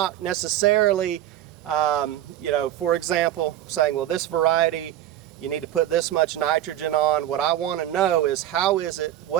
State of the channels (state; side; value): quieter; left; 12.4 dB